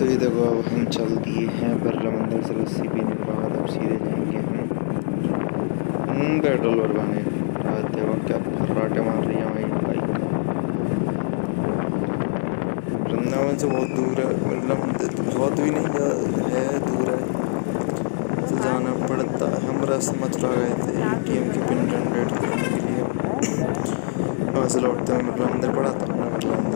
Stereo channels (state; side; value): silent; right; digital silence